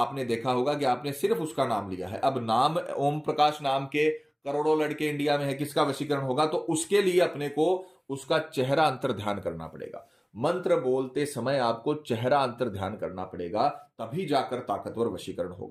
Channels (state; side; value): identical; both; correlation 1.00